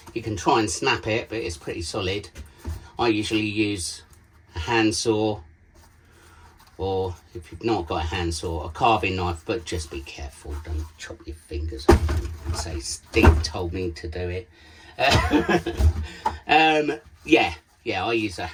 you can try and snap it, but it's pretty solid. I usually use a handsaw, or if you've not got a handsaw, a carving knife, but just be careful, don't chop your fingers off and say Steve told me to do it. Yeah, I use a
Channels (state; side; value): identical; both; correlation 1.00